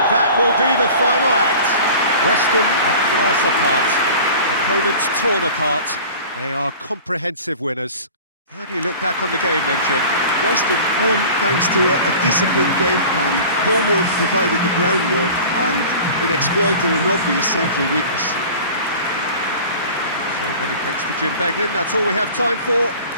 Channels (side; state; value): both; inverted; correlation -0.41